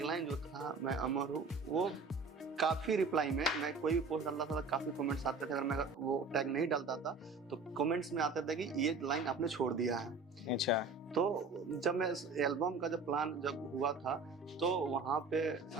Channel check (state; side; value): quieter; left; 4.0 dB